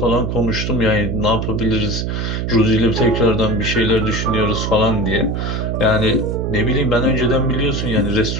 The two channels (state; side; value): noise; right; hum, 2 dB below the sound